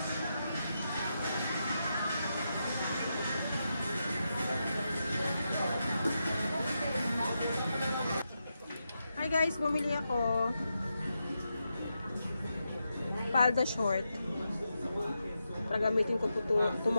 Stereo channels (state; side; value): inverted; both; correlation -0.86